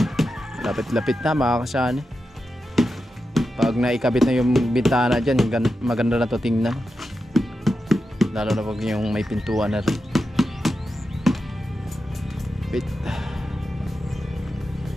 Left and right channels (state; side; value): normal; both; correlation 0.89